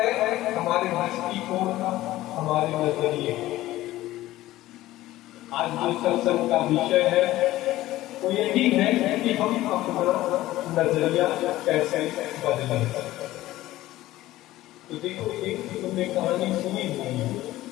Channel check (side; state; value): right; quieter; 16.0 dB